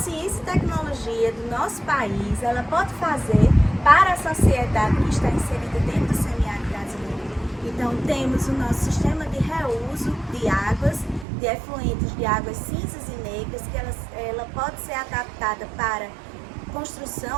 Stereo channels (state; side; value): drops out; left; at 11.2 s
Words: e tecnologia do nosso país ela pode fazer para a sociedade que está inserida dentro do semiárido brasileiro. Então temos o nosso sistema de reuso de águas, de efluentes de águas cinzas e negras, que ela pode ser adaptada para